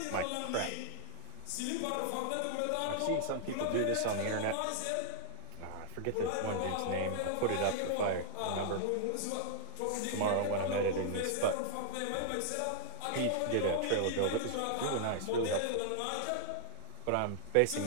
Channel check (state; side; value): different; both; correlation -0.01